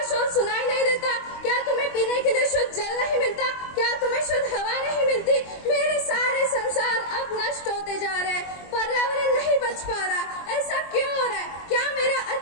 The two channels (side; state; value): right; late; 23 ms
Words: शोर सुनाई नहीं देता? क्या तुम्हें पीने के लिए शुद्ध जल नहीं मिलता? क्या तुम्हें शुद्ध हवा नहीं मिलती? मेरे सारे संसार अब नष्ट होते जा रहे हैं, पर्यावरण नहीं बच पा रहा। ऐसा क्यों हो रहा है? क्या मेरा